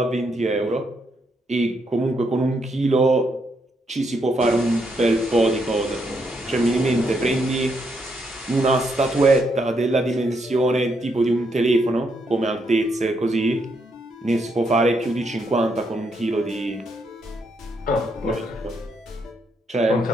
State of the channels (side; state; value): both; normal; correlation 0.77